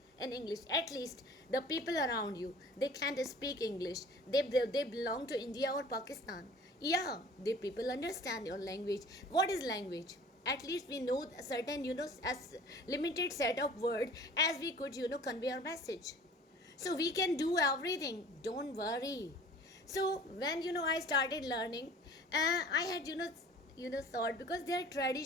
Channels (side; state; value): both; normal; correlation 0.47